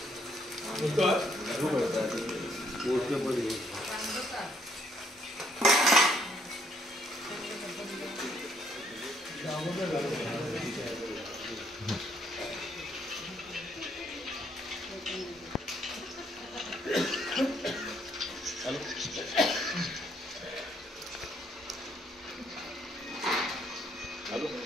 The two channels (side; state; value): both; normal; correlation 0.69